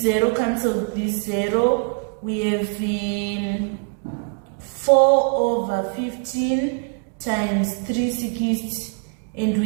0 cancels this 0. We have 4 over 15 times 360, and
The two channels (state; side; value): quieter; left; 38.5 dB